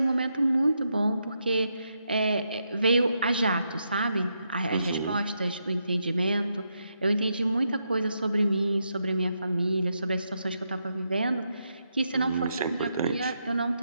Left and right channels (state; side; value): inverted; both; correlation -0.82